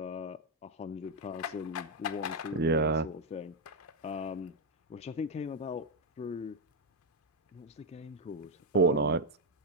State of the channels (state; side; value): normal; both; correlation 0.03